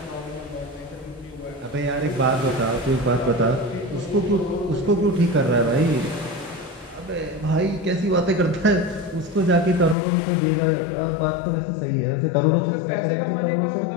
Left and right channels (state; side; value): drops out; right; at 10.0 s